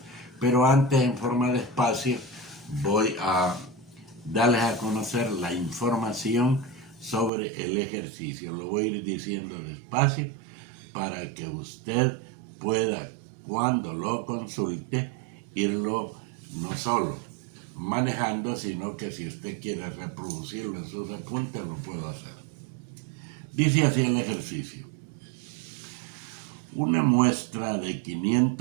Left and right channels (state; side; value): drops out; left; at 7.3 s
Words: pero antes, en forma de espacio, voy a darles a conocer la información sobre el ejercicio. Lo voy a ir diciendo despacio para que usted pueda, cuando lo consulte, irlo no solo manejando, sino que si usted quiere reproducirlo en sus apuntes, lo puedo hacer. Dice así el ejercicio: una muestra de